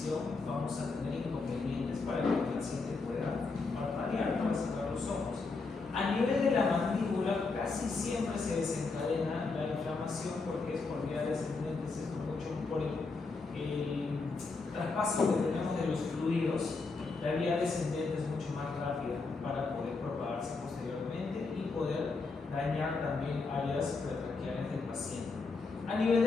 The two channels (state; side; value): quieter; right; 4.0 dB